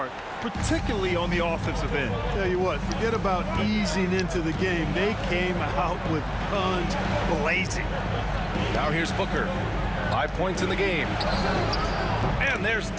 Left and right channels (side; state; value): both; identical; correlation 1.00